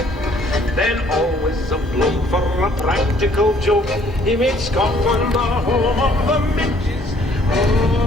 Then, always a bloke for a practical joke, he made Scotland the home of the midges.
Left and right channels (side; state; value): both; normal; correlation 0.61